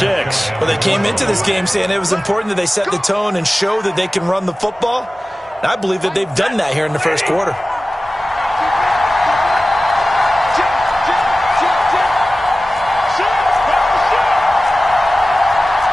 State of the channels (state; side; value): normal; both; correlation 0.96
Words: Well, they came into this game saying it was important that they set the tone and show that they can run the football. And I believe that they've done that here in the first quarter.